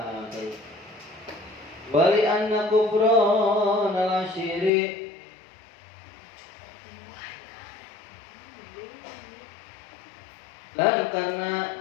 al-ashiri dan karena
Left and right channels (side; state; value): right; drops out; at 4.7 s